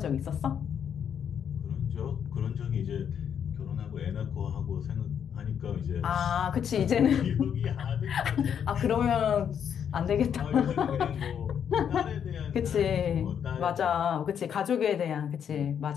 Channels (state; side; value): quieter; right; 8.2 dB